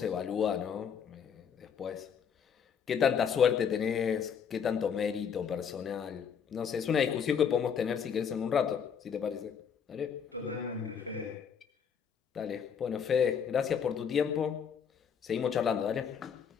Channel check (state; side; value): quieter; right; 7.3 dB